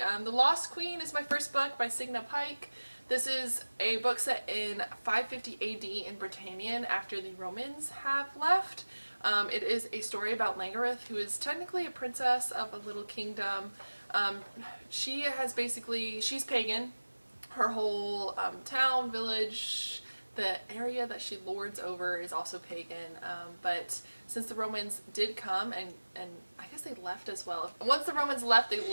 Lost Queen is my first book by Signa Pike. This is a book set in 550 AD in Britannia after the Romans have left. It is a story about Langareth, who is technically a princess of a little kingdom. She's pagan. Her whole town, village, the area that she lords over is also pagan, but since the Romans did come, and I guess they left as well. Once the Romans left, they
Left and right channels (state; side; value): inverted; both; correlation -1.00